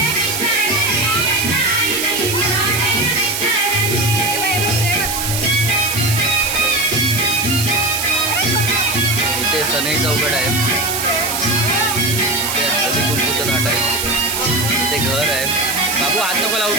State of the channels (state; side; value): noise; right; hiss, 2 dB below the sound